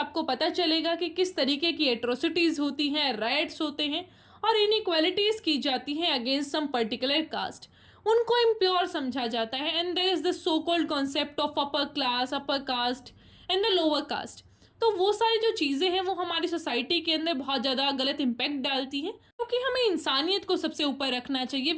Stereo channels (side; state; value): both; identical; correlation 1.00